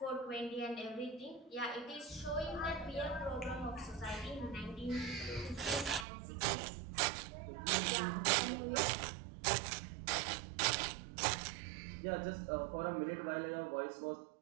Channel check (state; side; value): drops out; left; at 6.1 s